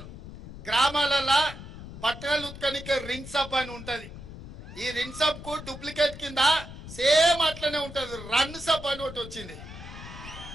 గ్రామాలలో బట్టలు ఉత్కనికే రింగ్ సబ్ అని ఉంటది. ఈ రింగ్ సబ్ కు డూప్లికేట్ కింద సేమ్ అట్లనే ఉంటది రన్ సబ్ అని ఒకటి వచ్చింది.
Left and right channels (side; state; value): left; noise; rumble, 13 dB below the sound